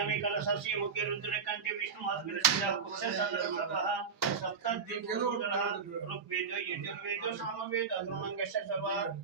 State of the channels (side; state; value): left; quieter; 5.8 dB